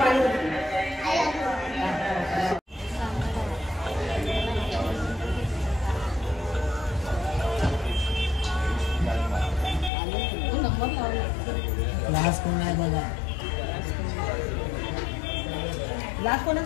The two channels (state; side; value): drops out; right; at 9.9 s